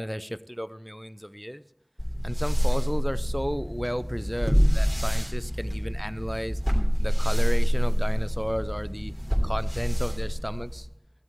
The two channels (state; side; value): identical; both; correlation 1.00